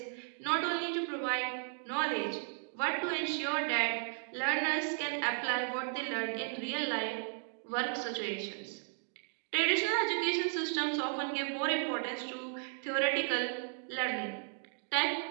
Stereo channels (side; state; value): left; silent; 54 dB below the other